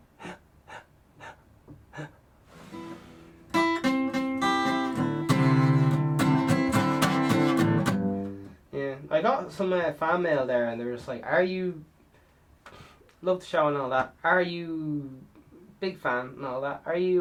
Yeah, I got some fan mail there, and they were just like, "Are you love the show and all that? Are you big fan and all that? Are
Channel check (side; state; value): both; identical; correlation 1.00